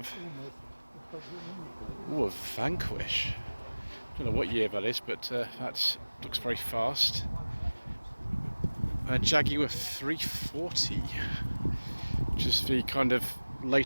a Vanquish. Don't know what year that is, but that looks very fast. A Jaguar 340, which is the kind of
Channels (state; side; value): inverted; both; correlation -1.00